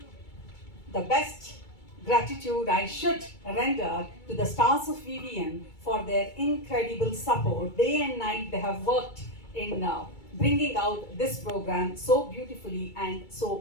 the best gratitude I should render to the stars of VVN for their incredible support. Day and night they have worked in bringing out this program so beautifully and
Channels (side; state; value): right; late; 2.3 ms